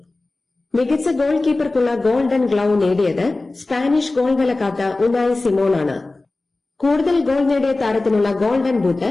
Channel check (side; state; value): right; quieter; 3.2 dB